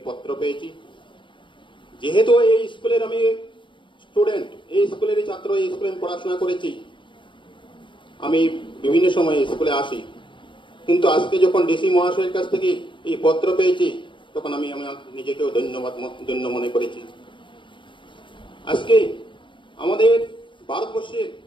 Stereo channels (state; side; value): late; right; 0.24 ms